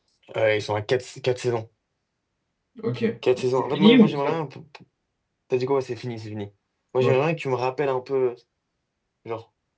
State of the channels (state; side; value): identical; both; correlation 1.00